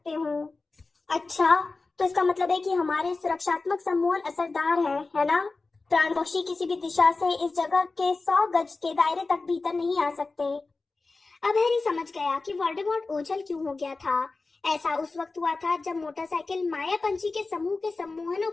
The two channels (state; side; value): quieter; right; 3.7 dB